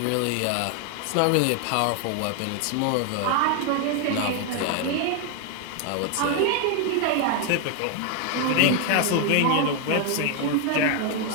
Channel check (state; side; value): different; both; correlation 0.01